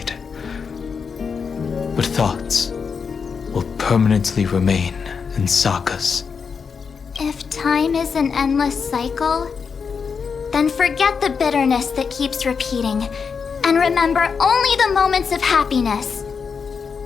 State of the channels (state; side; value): quieter; right; 5.9 dB